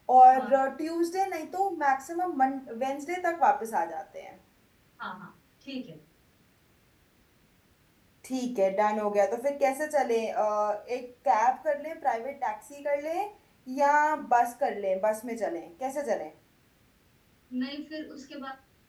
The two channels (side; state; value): both; identical; correlation 1.00